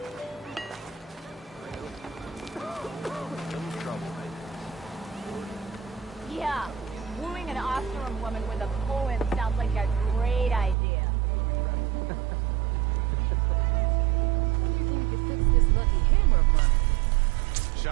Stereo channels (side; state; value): left; drops out; at 10.8 s